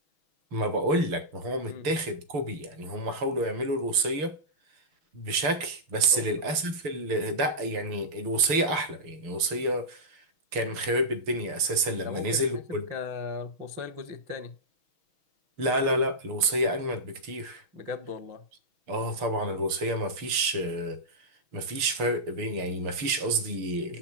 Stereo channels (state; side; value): late; left; 6.3 ms